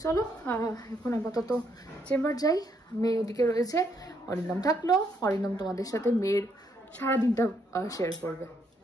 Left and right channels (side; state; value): both; normal; correlation 0.74